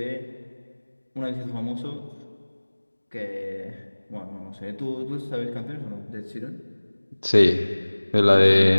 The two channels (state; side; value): inverted; both; correlation -1.00